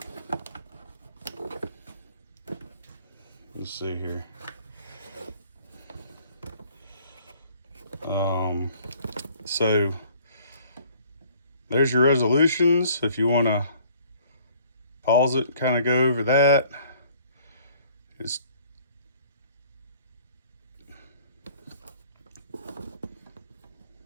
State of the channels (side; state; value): both; inverted; correlation -0.57